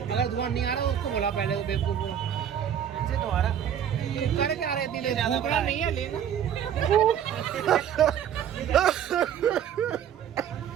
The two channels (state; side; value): quieter; left; 9.3 dB